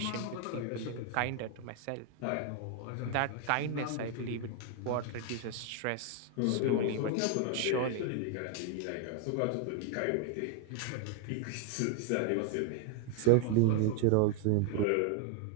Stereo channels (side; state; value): both; different; correlation 0.00